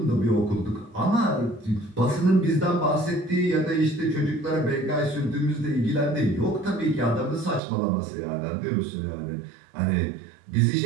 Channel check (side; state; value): left; drops out; at 7.6 s